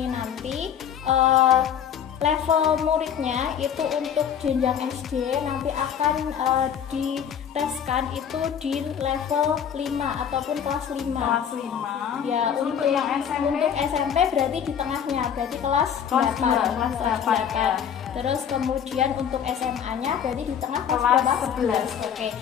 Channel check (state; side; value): quieter; right; 8.4 dB